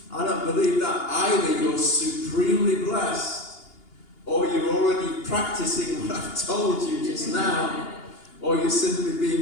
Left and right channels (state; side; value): late; right; 2.8 ms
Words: I don't believe that either. You're supremely blessed, or you're already practicing what I've told you just now, or you're simply